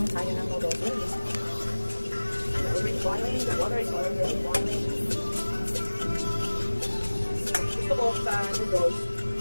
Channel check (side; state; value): both; inverted; correlation -1.00